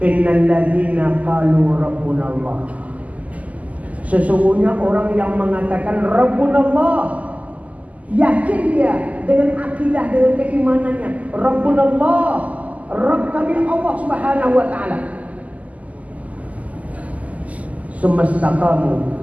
"Innal ladzina qalu rabbuna Allah." Sesungguhnya orang yang mengatakan Rabbuna Allah, yakin dia dengan akidah, dengan keimanannya, Rabbuna Allah, Rabb kami Allah Subhanahu wa taala. Semestaqamu,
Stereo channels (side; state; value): left; late; 0.074 ms